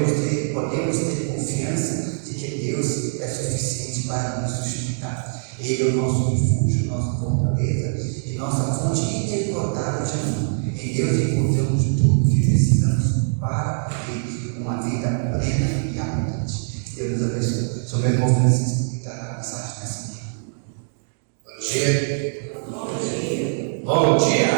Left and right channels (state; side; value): silent; left; digital silence